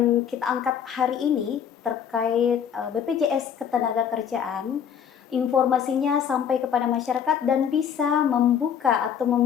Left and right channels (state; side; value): quieter; right; 8.2 dB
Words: kita angkat hari ini terkait BPJS Ketenagakerjaan, informasinya sampai kepada masyarakat dan bisa membuka atau